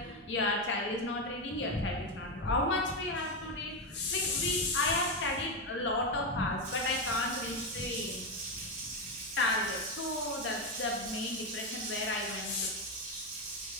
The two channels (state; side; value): normal; both; correlation 0.09